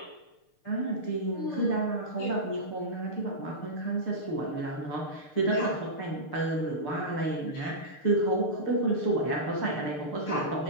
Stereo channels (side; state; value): right; late; 6.7 ms